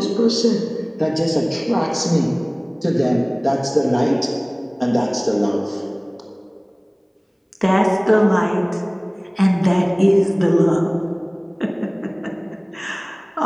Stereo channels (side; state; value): both; identical; correlation 1.00